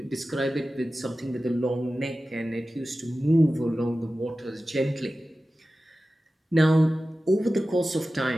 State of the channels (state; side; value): normal; both; correlation 0.95